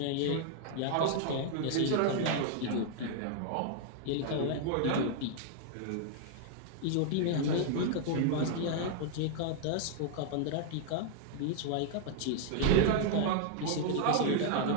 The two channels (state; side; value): different; both; correlation -0.01